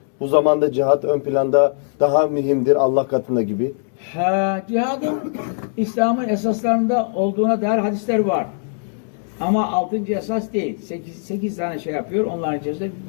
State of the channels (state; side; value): silent; right; digital silence